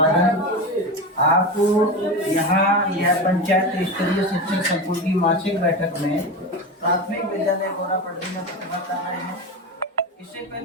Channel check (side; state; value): both; normal; correlation 0.22